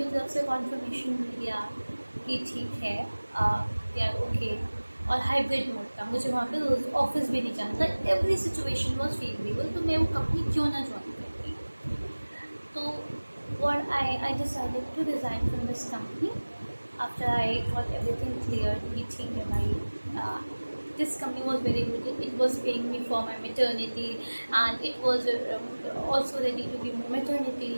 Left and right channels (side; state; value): both; inverted; correlation -1.00